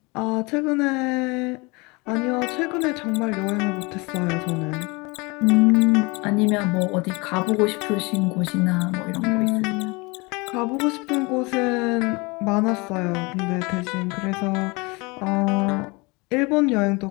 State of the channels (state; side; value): quieter; right; 26.7 dB